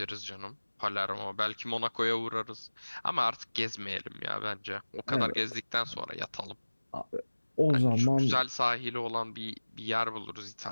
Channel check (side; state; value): both; inverted; correlation -1.00